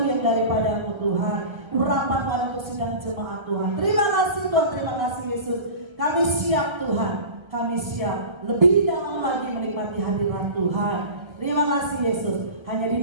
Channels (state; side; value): late; left; 1.3 ms